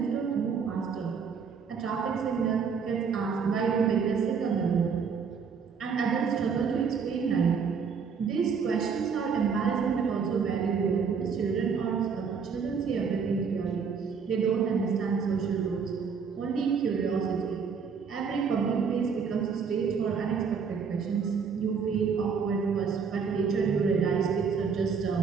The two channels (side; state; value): left; quieter; 6.0 dB